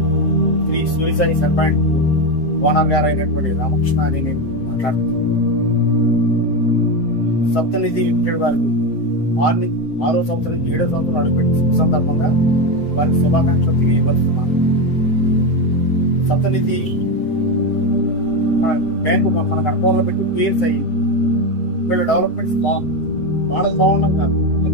శ్రీ సూర్యసాయి సర్పాయింట్ ఓనర్ గారు అయినటువంటి రామకృష్ణ అని నేను మాట్లాడుతున్నాను. సప్తనిధి లిమిటెడ్ వారికి 6వ సంవత్సరం నుంచి 7వ సంవత్సరం అడుగుపెట్టి శుభ సందర్భంగా వారికి శుభాకాంక్షలు తెలియపరుస్తున్నాను. సప్తనిధి మన బ్యాంకు మన కడపలో పెట్టి 2 years అయ్యి వీళ్ళ డెవలప్మెంట్స్ బాగుంది. వాళ్ళకి బాగున్నాం కాదు,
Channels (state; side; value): late; right; 7.7 ms